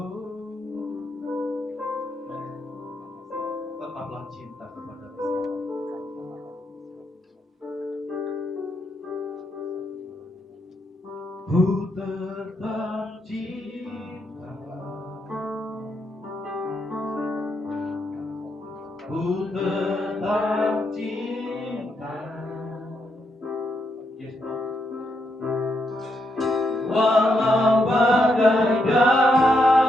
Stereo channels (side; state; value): both; normal; correlation 0.80